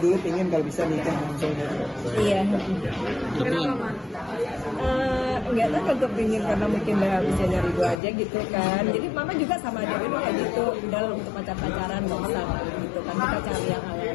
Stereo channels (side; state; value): right; drops out; at 8.0 s